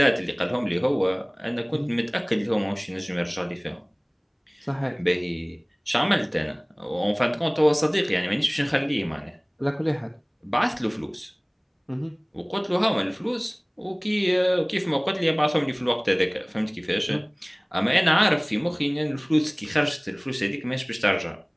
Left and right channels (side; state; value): both; identical; correlation 1.00